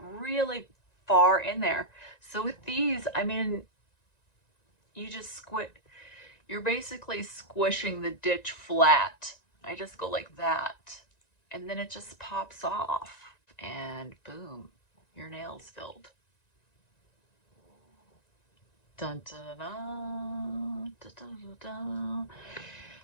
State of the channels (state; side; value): late; right; 1.9 ms